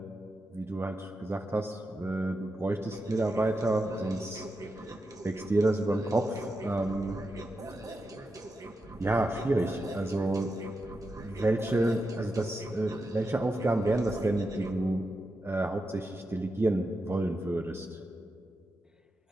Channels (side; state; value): both; normal; correlation 0.88